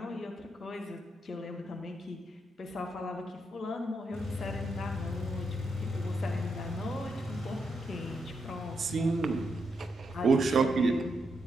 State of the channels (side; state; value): both; normal; correlation 0.82